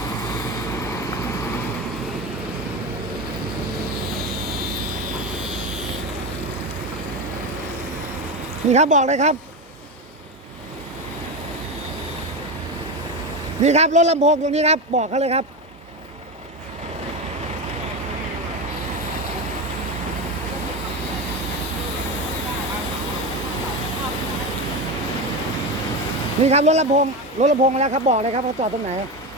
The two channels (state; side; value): normal; both; correlation 0.18